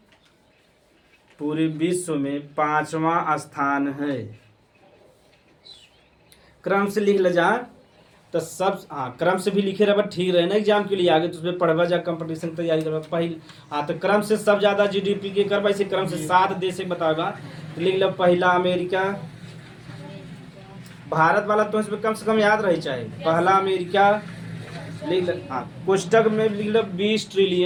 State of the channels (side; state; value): both; identical; correlation 1.00